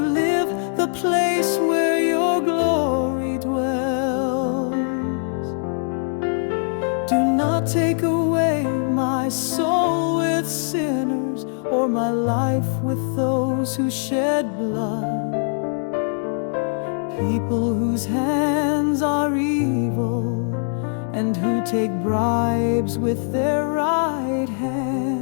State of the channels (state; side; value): silent; right; 63 dB below the other